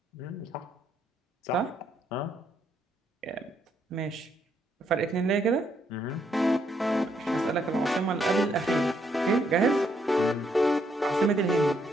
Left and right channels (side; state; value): both; normal; correlation 0.74